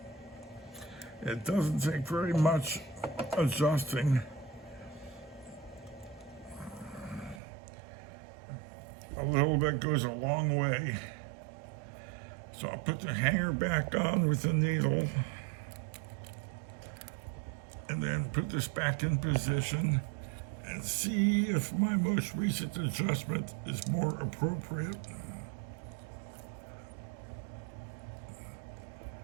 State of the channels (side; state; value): left; drops out; at 7.4 s